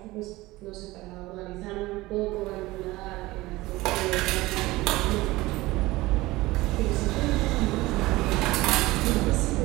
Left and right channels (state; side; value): quieter; left; 19.4 dB